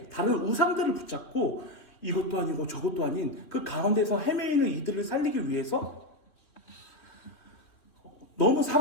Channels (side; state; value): right; late; 3.1 ms